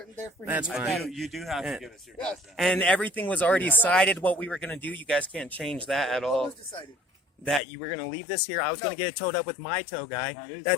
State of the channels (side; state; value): right; drops out; at 7.6 s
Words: there for That's fine. You do have to give us your badge. And everything was already decided what we were going to do. You guys can't change that at all. What was decided? That you were going to leave this here. I was going to get it towed up with my tow guy.